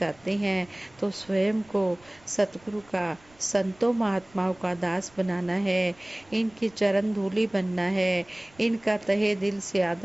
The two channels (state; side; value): noise; right; rumble, 28 dB below the sound